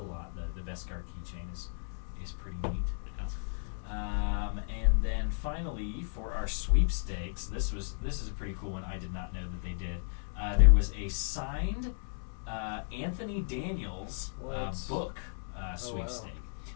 lot. The Beskar keychain is pretty neat. And then finally, for our sweepstakes, this is a pretty cool one. I did not know that they did. There was a signed Anthony Daniels book sweepstake.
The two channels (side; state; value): right; silent; digital silence